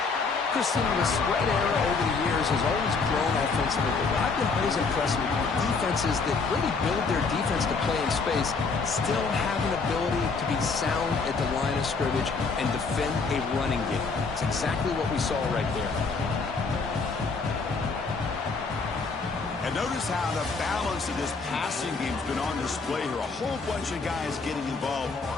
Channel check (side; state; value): right; quieter; 4.5 dB